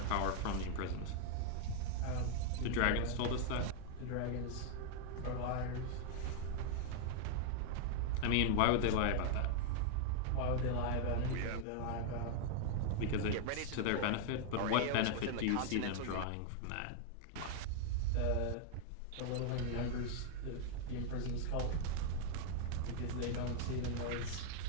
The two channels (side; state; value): both; different; correlation 0.00